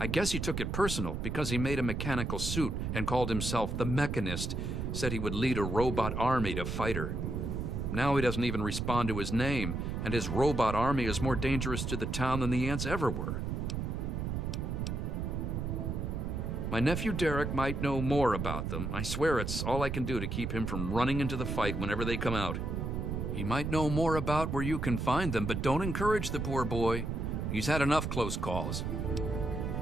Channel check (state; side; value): noise; right; rumble, 2 dB below the sound